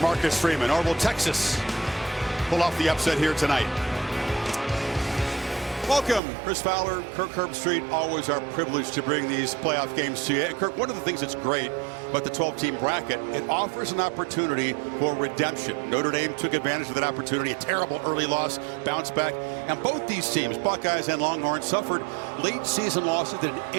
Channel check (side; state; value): left; drops out; at 6.2 s